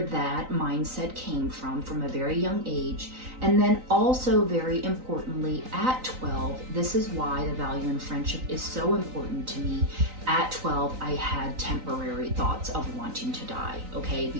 that mindset came from a very young age. And then also, very importantly, at 12, this is why the value in friendship is so important to me. At 12, I had temporary thoughts of wanting to die, okay?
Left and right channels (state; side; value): late; left; 3.9 ms